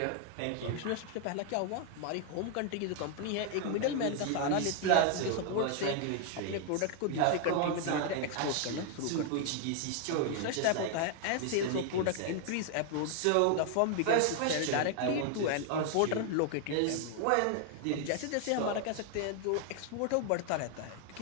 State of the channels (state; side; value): different; both; correlation 0.00